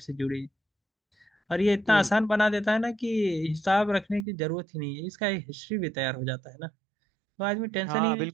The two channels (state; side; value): drops out; left; at 4.2 s